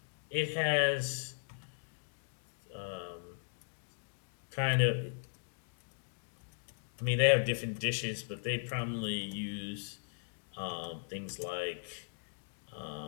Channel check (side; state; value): right; silent; digital silence